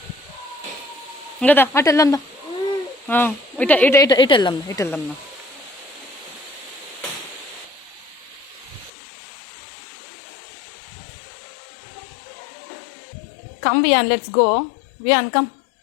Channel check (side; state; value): right; drops out; at 8.9 s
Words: ఇంకదా అటు వెళ్దాందా, ఇటు ఇటు ఇటు ఇటు వెళ్దాం, ఇటు వెళ్దాందా. Come Viaan, let's go Viaan, come